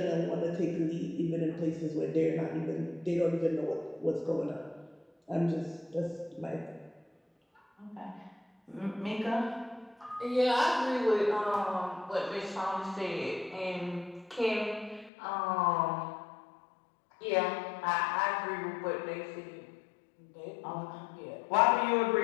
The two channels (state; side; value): drops out; right; at 15.1 s